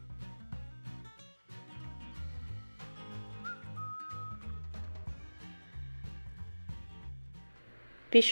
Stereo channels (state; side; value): inverted; both; correlation -1.00